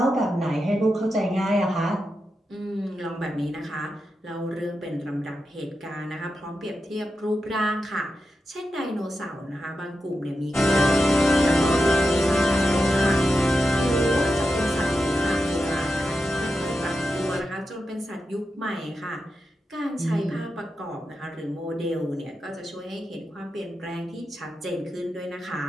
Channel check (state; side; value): normal; both; correlation 0.89